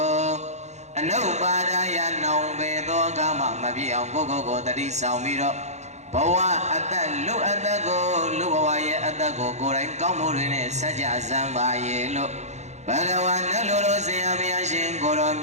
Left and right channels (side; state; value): left; late; 0.33 ms